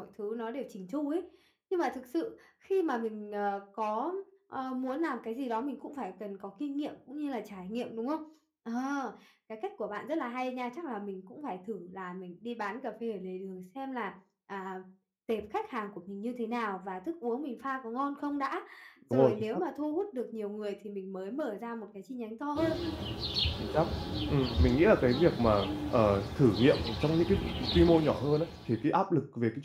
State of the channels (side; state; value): both; identical; correlation 1.00